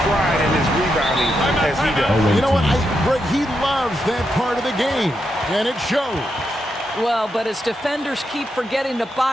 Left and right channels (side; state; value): both; normal; correlation 0.84